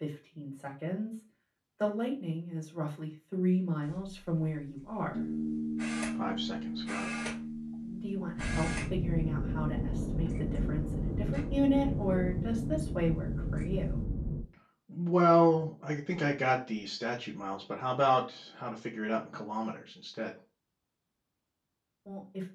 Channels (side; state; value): both; identical; correlation 1.00